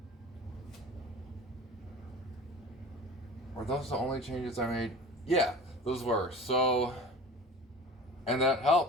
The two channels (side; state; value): both; normal; correlation 0.39